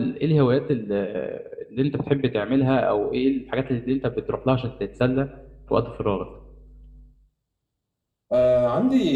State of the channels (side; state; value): both; identical; correlation 1.00